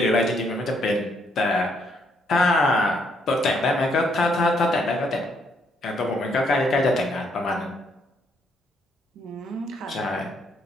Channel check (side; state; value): both; normal; correlation 0.72